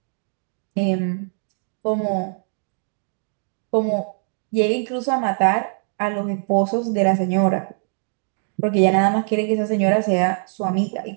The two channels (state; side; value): silent; left; 64 dB below the other